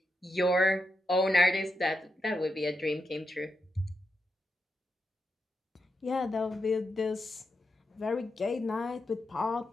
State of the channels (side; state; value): both; normal; correlation 0.86